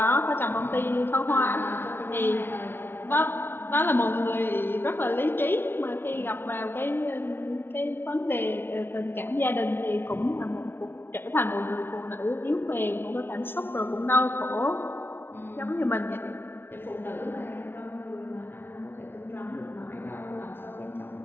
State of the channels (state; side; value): late; right; 0.11 ms